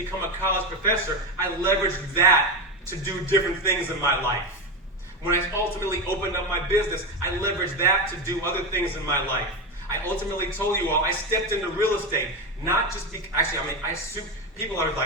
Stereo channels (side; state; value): both; normal; correlation 0.15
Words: a college professor, I leveraged that to do different things in my life. When I ultimately opened up my business, I leveraged that to do other things in my life. I ultimately told you all, I stepped into real estate, not just people are